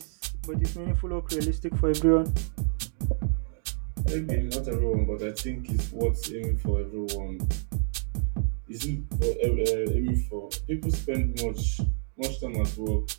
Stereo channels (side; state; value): left; silent; 58 dB below the other